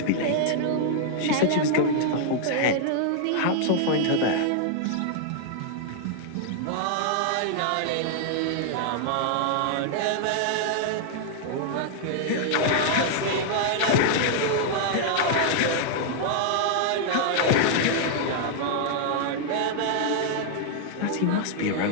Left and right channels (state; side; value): different; both; correlation -0.01